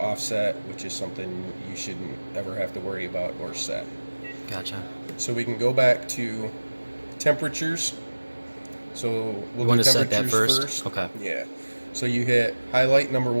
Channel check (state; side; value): inverted; both; correlation -1.00